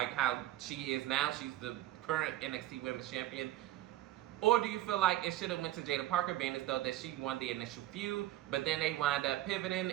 how she is now? She's the current NXT Women's Champion. Or do you feel like it should have went to Jaida Parker, being as though that she won the initial feud, but then they wind up pivoting,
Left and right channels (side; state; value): left; quieter; 14.7 dB